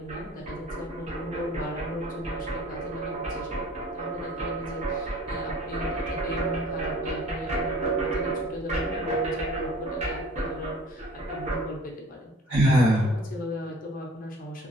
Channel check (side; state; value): both; normal; correlation 0.48